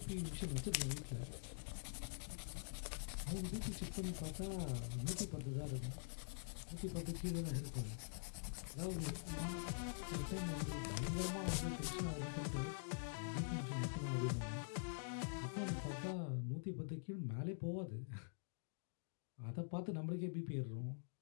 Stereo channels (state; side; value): silent; right; digital silence